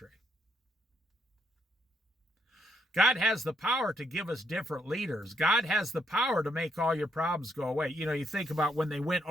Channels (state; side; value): normal; both; correlation 0.74